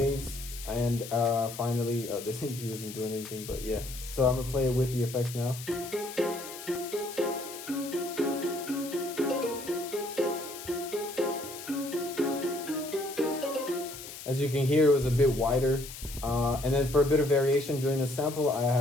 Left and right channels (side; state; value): left; noise; hiss, 12 dB below the sound